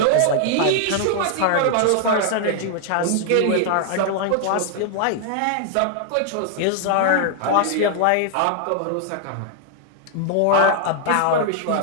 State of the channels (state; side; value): different; both; correlation 0.00